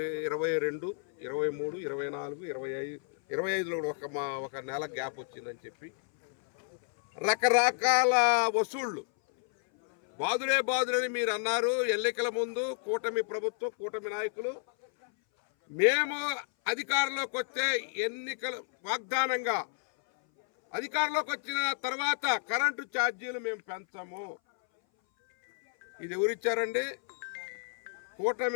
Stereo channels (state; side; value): silent; right; 57 dB below the other